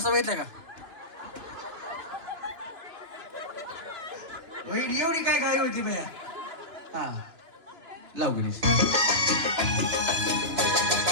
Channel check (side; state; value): left; late; 2.9 ms